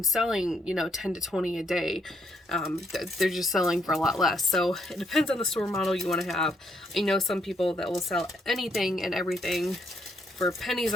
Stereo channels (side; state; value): both; normal; correlation 0.73